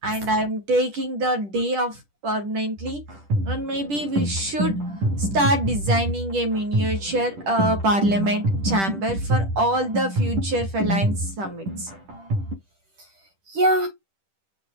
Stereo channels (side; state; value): left; late; 10 ms